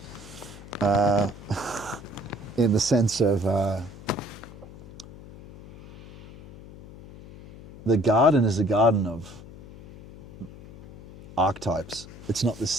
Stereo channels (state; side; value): noise; left; hum, 17 dB below the sound